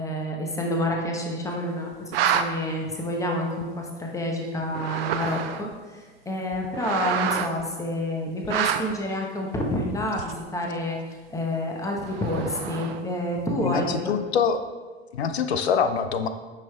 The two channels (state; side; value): normal; both; correlation 0.21